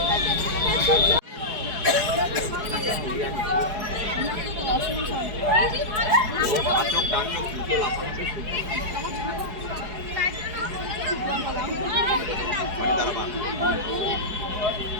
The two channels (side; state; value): left; late; 4.7 ms